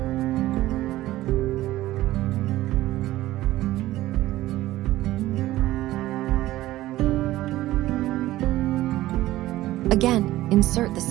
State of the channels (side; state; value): left; quieter; 15.9 dB